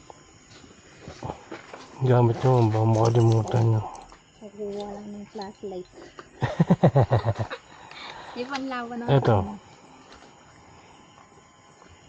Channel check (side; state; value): both; identical; correlation 1.00